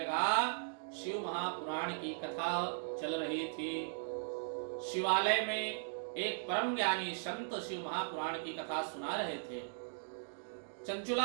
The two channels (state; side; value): silent; left; digital silence